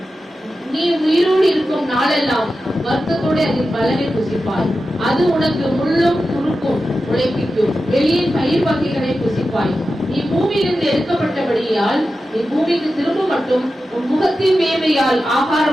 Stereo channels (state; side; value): normal; both; correlation 0.92